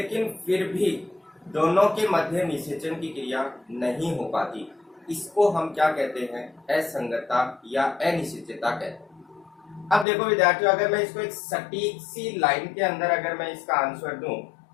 फिर भी दोनों के मध्य निषेचन की क्रिया नहीं हो पाती, इसको हम क्या कहते हैं? असंगतता या अनिश्चितता कहते हैं। अब देखो विद्यार्थियों, अगर मैं इसको एक सटीक सी लाइन के अंदर अगर मैं इसका आंसर दूं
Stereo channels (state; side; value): drops out; right; at 10.1 s